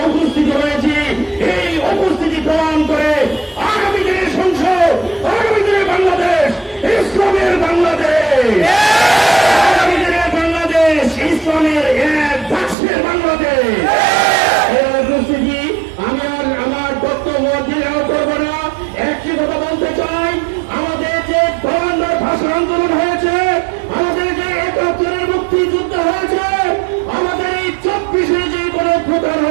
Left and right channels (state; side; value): drops out; left; at 12.8 s